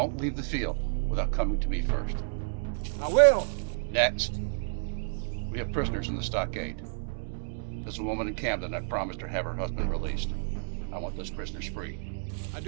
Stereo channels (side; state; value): left; silent; digital silence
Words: leave the field without coming to me first. I will. Next, we have prisoners in the stockade. There's a woman in Camden. I promised her have her husband released. I want those prisoners free. I